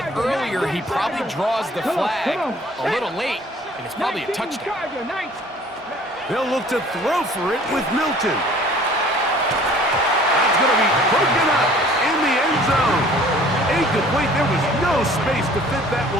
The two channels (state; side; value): normal; both; correlation 0.52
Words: earlier, he probably draws the flag a little late, and it's probably a touchdown. They'll look to throw for it with Milton. That's going to be broken up in the end zone. Incomplete. There was no space to fit that